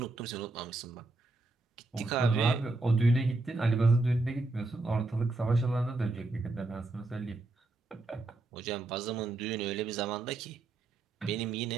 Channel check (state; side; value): quieter; left; 3.1 dB